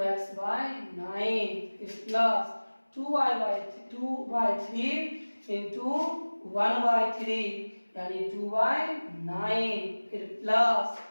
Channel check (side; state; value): both; inverted; correlation -1.00